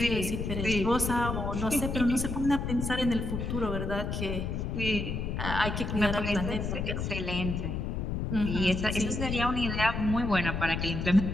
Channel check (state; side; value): noise; left; rumble, 3 dB below the sound